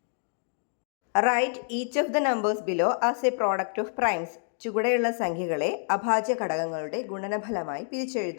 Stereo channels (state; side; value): silent; right; digital silence